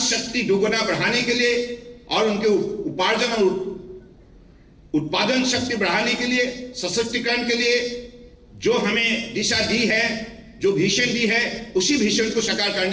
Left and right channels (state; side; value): identical; both; correlation 1.00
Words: दोगुना बढ़ाने के लिए और उनके उपार्जन और उत्पादन शक्ति बढ़ाने के लिए, सशक्तिकरण के लिए जो हमें दिशा दी है, जो विजन दी है, उसी विजन को साकार